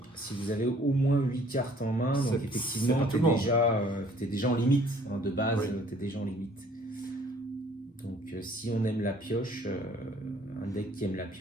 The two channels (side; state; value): both; normal; correlation 0.57